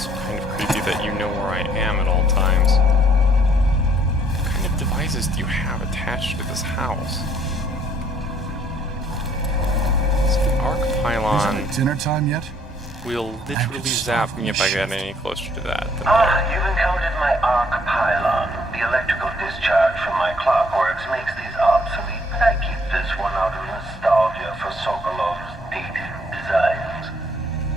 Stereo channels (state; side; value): normal; both; correlation 0.65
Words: kind of creepy that you know where I am at all times. What kind of devices do you have attached to this house? So the arc pylon Isn't it dinner time yet? will literally zap me if I get any closer to that. You've encountered my arc pylon. The electrical discharge from my clockworks makes these obsolete, but I keep this one out of nostalgia for Sokolov's dated designs.